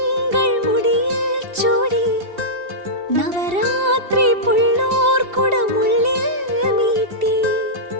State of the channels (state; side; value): late; left; 2.7 ms